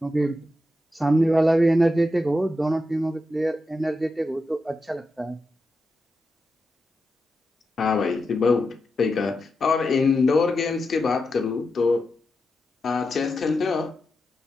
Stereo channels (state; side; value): normal; both; correlation 0.88